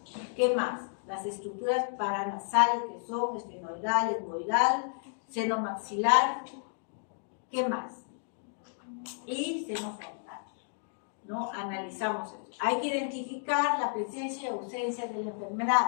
¿Qué más? Las estructuras paranasales que son esfenoidal, etmoidal, seno maxilar. ¿Qué más? Y seno frontal, ¿no? Analizamos eso. Hay que identificar la presencia y ausencia de la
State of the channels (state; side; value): silent; right; digital silence